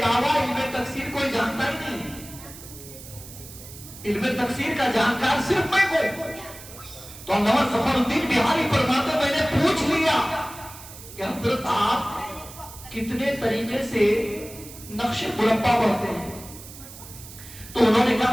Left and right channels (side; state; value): right; noise; hiss, 16 dB below the sound